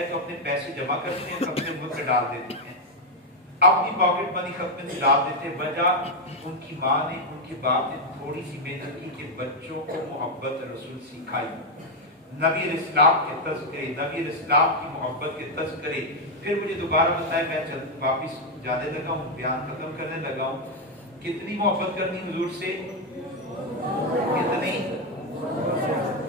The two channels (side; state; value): both; normal; correlation 0.02